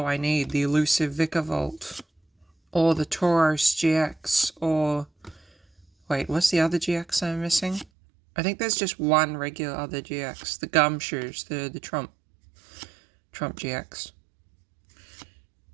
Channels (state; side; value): drops out; left; at 7.9 s